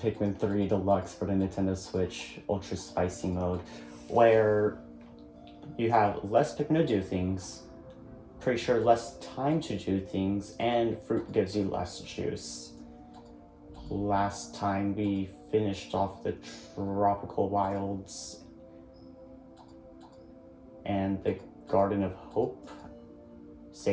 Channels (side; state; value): both; identical; correlation 1.00